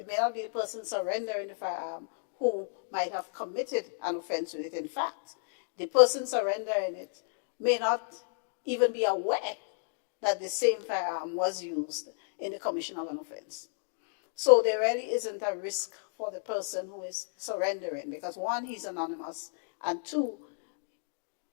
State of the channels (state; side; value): silent; right; digital silence